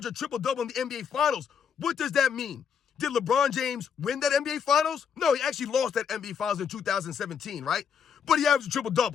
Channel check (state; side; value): quieter; right; 7.2 dB